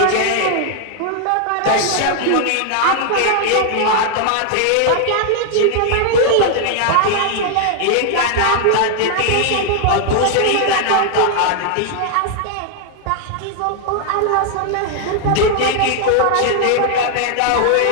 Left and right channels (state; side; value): different; both; correlation 0.00